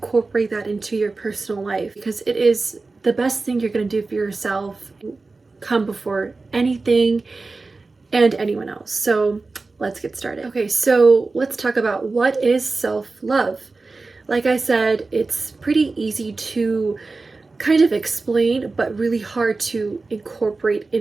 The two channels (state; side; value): quieter; left; 3.7 dB